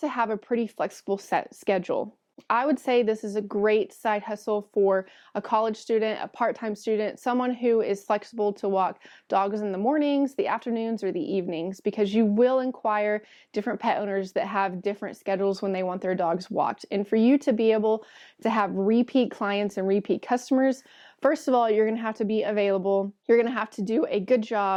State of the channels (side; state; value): both; identical; correlation 1.00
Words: have a pretty flexible set schedule. I would say this is a great side hustle for a college student, a part-time student, someone who is flexible to walk dogs in the mornings, the afternoons, or the evenings, because you will inquire different pet owners that have different schedules when they want their dogs walked. And for you to be able to have repeat clients and repeat customers, first of all, you're going to have to be available. You're going to have to do a good